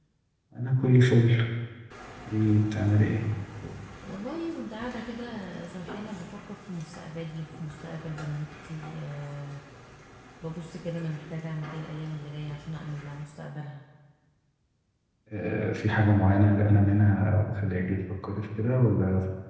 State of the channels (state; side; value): identical; both; correlation 1.00